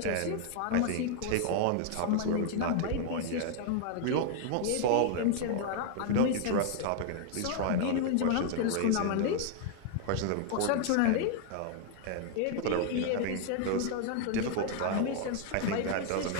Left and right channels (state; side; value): different; both; correlation 0.00